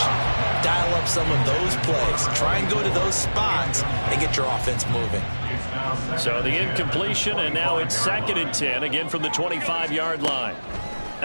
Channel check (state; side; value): inverted; both; correlation -1.00